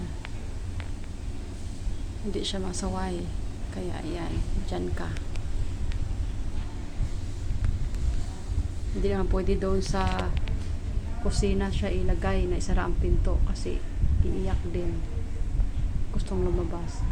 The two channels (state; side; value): identical; both; correlation 1.00